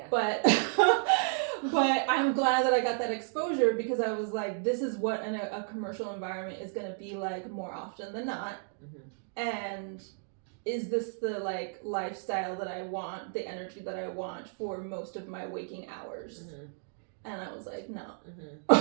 But but I'm glad that I got that exposure because I was like, this is what a commercial environment is going to be like more often than not. And is this the like lifestyle that I want, the energy that I want for most of my waking hours? And I was like, no.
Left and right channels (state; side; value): silent; left; 56 dB below the other